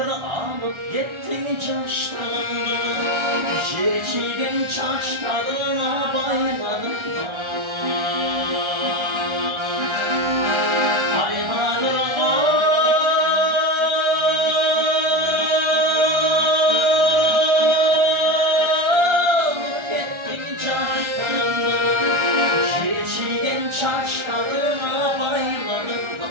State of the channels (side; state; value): left; late; 1.4 ms